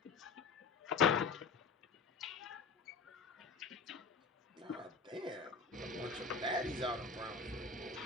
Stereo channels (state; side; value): quieter; right; 4.8 dB